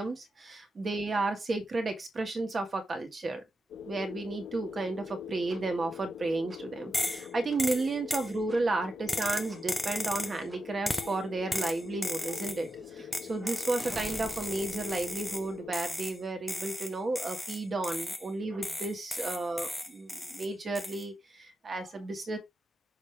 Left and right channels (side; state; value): both; normal; correlation 0.89